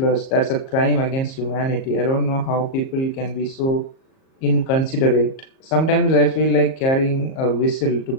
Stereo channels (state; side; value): late; right; 38 ms